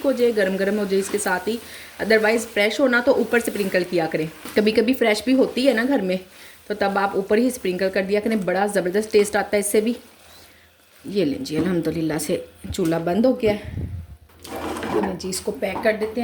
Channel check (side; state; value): both; identical; correlation 1.00